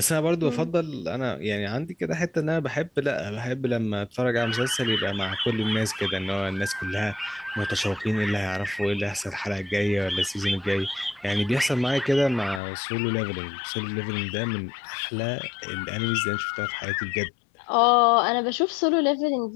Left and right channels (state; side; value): drops out; right; at 12.6 s